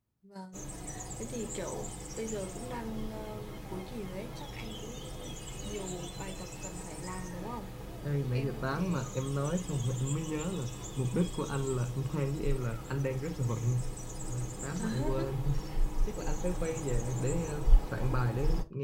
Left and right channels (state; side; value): identical; both; correlation 1.00